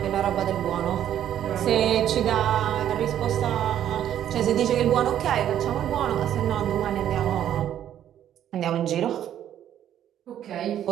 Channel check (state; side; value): quieter; left; 10.8 dB